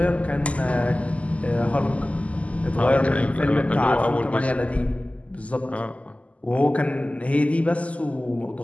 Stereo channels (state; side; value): late; right; 0.067 ms